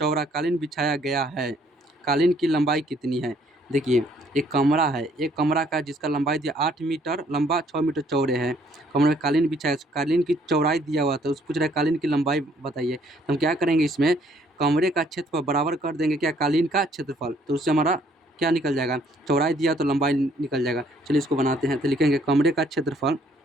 कालीन बिछाया गया है, कालीन की लंबाई कितनी है। देखिए, एक कमरा है, एक कमरा का जिसका लंबाई दिया 8 मीटर लंबा, 6 मीटर चौड़े है, कमरे में कालीन बिछाया, कालीन की चौड़ाई दिया हुआ था, उस पूछ रहा है कालीन की लंबाई बताइए। तो हम क्या करेंगे, इसमें कमरे का क्षेत्रफल बराबर कर देंगे क्या, कालीन का क्षेत्रफल, तो उससे हमारा क्या निकल जाएगा, चौड़ाई दिया तो लंबाई निकल जाएगा। चलिए इसको बनाते हैं, तो लिखेंगे कमरे का क्षेत्रफल,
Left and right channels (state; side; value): normal; both; correlation 0.64